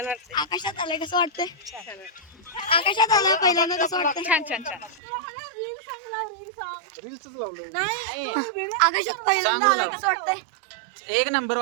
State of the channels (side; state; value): left; drops out; at 5.0 s